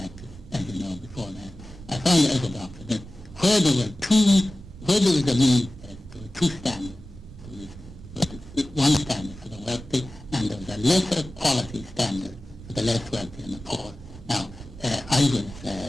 as you know, before that, I found as a doctor that where there was a means test, there were two standards. There was one standard for the wealthy, and there was a lesser quality standard for the less wealthy and the poor. Now, I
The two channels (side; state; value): both; normal; correlation 0.96